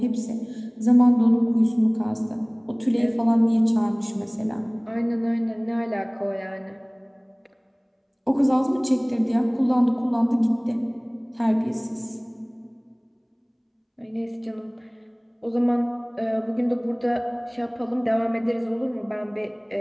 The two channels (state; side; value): identical; both; correlation 1.00